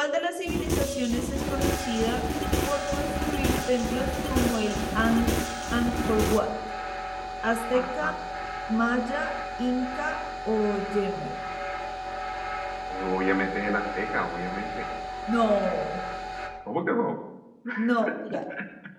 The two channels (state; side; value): identical; both; correlation 1.00